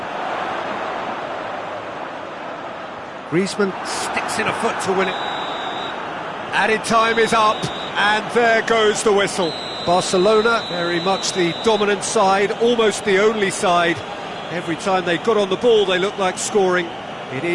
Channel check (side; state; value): both; identical; correlation 1.00